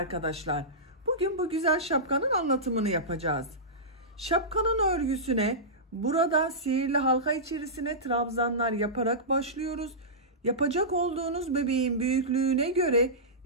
Bugün bu güzel şapkanın anlatımını yapacağız. Şapkanın örgüsüne burada sihirli halka içerisine trabzanlar yaparak başlıyoruz. Yapacak olduğunuz bebeğin büyüklüğüne göre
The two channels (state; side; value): normal; both; correlation -0.16